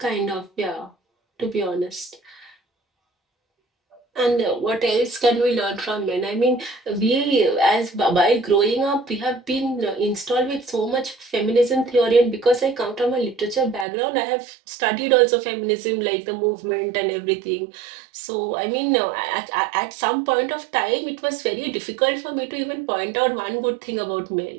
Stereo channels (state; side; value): drops out; left; at 13.9 s